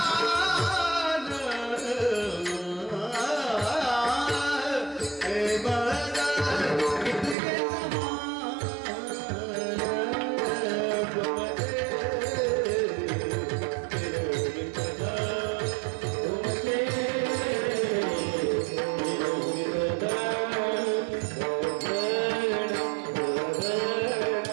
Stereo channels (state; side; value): drops out; left; at 7.4 s